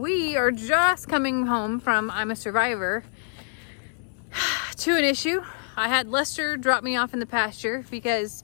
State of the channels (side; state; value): right; silent; 61 dB below the other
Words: are just coming home from I'm a Survivor to an issue. I had Lester drop me off in the pasture because,